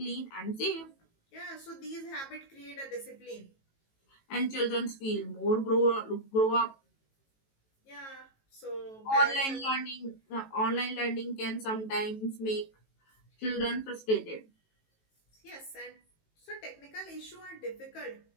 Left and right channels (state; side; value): late; right; 18 ms